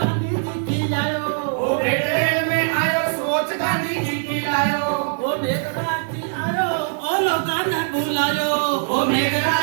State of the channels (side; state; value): left; silent; digital silence